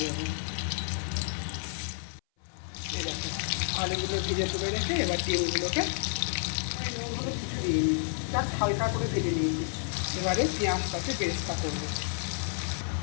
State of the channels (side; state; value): right; silent; 58 dB below the other